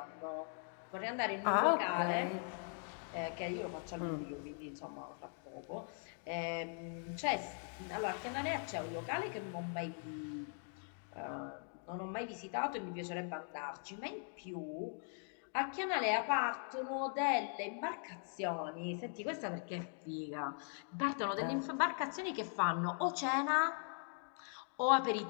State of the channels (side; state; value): right; silent; 51 dB below the other